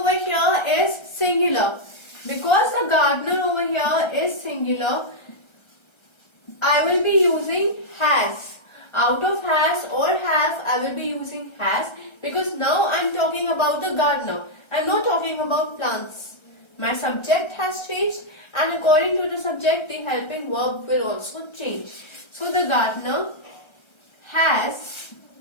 here is singular. Because the gardener over here is singular, I will be using has. Out of has or have, I will be using has, because now I am talking about the gardener. I am not talking about plants. My subject has changed, and according to the subject, the helping verb will also change. So the gardener has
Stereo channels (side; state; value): right; late; 1.3 ms